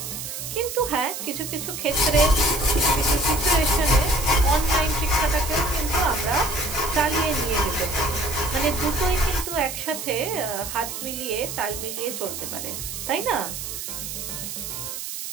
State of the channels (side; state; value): right; noise; hiss, 7 dB below the sound